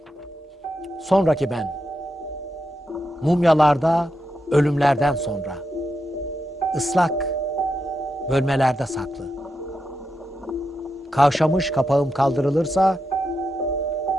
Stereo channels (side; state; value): both; normal; correlation 0.86